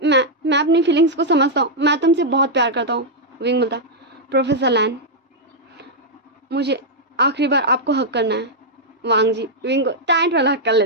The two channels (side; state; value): both; normal; correlation -0.05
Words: मैं अपनी फीलिंग्स को समझता हूँ, मैं तुमसे बहुत प्यार करता हूँ। विंग बोलता, प्रोफेसर लैन मुझे आखिरी बार आपको हक करना है। वांग जी विंग को टाइट वाला हक कर